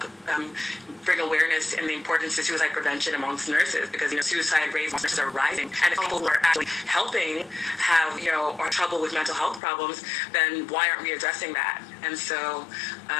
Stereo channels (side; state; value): right; drops out; at 9.6 s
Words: bring awareness in the importance of suicide prevention amongst nurses, because suicide rates amongst nurses are rising, and if people who are actually helping have are trouble with mental health problems, then why aren't we addressing that? And so